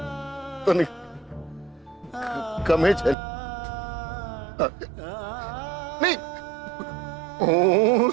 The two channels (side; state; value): left; drops out; at 3.2 s